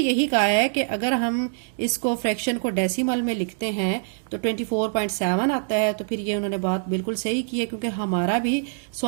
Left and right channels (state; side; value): silent; left; digital silence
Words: कहा है कि अगर हम इसको फ्रैक्शन को डेसिमल में लिखते हैं तो 24.7 आता है। तो फिर ये उन्होंने बात बिल्कुल सही की है क्योंकि हमारा भी